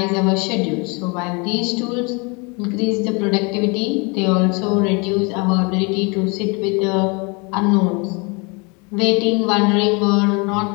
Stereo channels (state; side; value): quieter; right; 30.4 dB